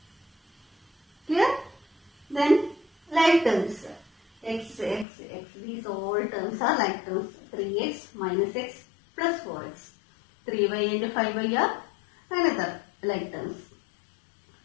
Clear? Then like terms. X, these all terms are like terms. 3x minus x plus 4x. 3y and 5y are another like terms.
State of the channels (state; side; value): drops out; right; at 5.1 s